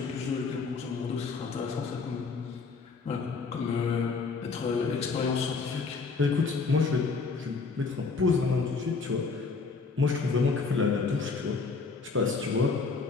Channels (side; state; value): right; quieter; 4.6 dB